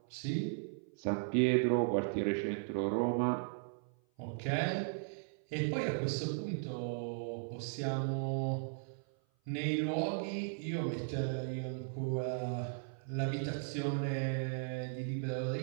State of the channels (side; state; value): left; silent; 53 dB below the other